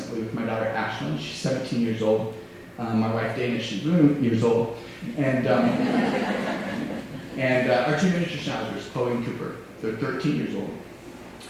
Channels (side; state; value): both; identical; correlation 1.00